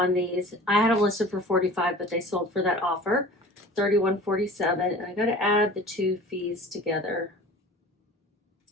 these. I had them listed for $45, but they sold for that offer, $31.47. And I got to add the 2 fees together.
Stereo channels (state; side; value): normal; both; correlation 0.41